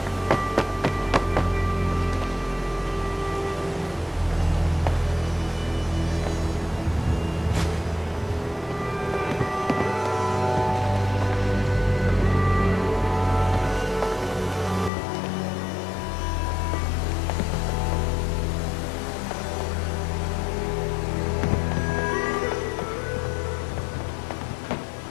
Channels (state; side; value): drops out; right; at 14.9 s